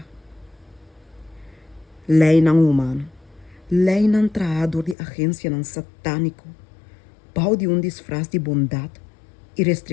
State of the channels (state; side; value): drops out; right; at 5.0 s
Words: Lei não humano, lei não traador de agência não satânico, pau de disfraz de bondade e